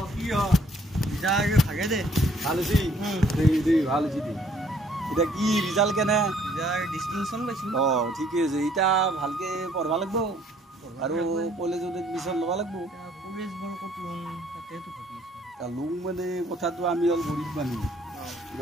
কি হ ৰিজাল্ট ভাগে দে ভাল হৈছে দেই ভাল হৈছে দে এটা কি ৰিজাল্ট কেনে ৰিজাল্ট ডিস্টিংশন পাইছো ঠিকে আছে এটা ভালকে পঢ়বা লাগব আৰু কলেজত এডমিশন লবা লাগব কলেজ বৰ কত লম তাতেটো ভাবি আছো তা লম মানে কথাটো আমি অল গৰিব মানুহ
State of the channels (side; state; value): both; normal; correlation 0.62